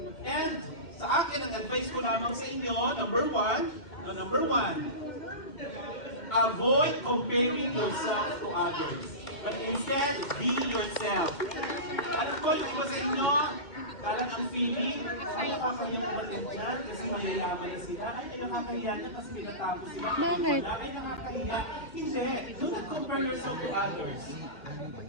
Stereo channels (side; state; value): right; late; 2.1 ms